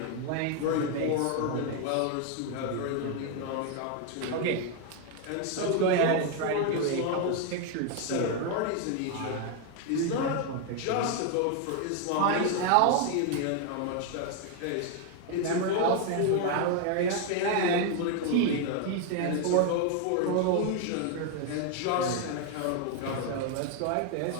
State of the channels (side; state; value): both; different; correlation 0.01